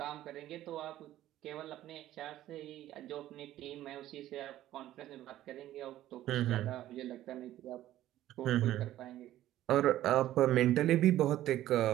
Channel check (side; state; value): left; quieter; 13.7 dB